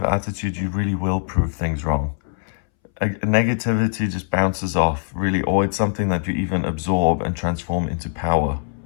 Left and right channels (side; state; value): right; silent; 63 dB below the other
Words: attitude, you really will prove things wrong. Negativity just bounces off, really, or it's something that you even absorb and transform into power.